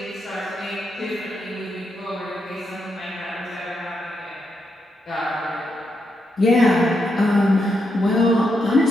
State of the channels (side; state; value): both; normal; correlation 0.82